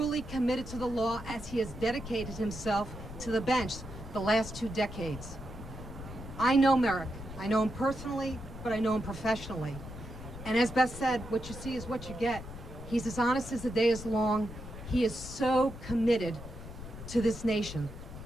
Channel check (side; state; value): left; noise; rumble, 12 dB below the sound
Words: committed to the law, as he has dedicated himself to the bench the last 2 decades. I know Merrick. I know him personally, but I know him professionally. And as Beth said, what you see is what you get. He's as honest as the day is long. He is so committed to this nation.